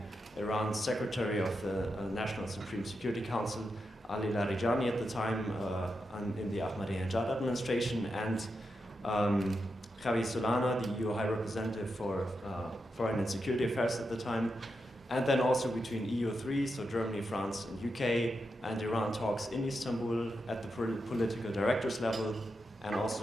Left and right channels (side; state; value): both; normal; correlation 0.86